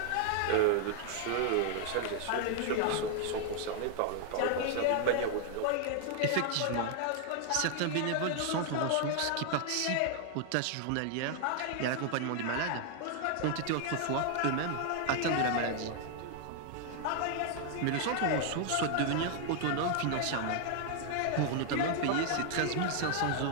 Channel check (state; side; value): different; both; correlation 0.00